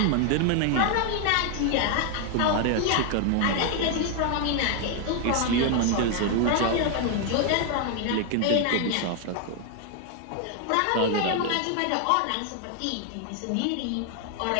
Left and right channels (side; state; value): both; different; correlation 0.00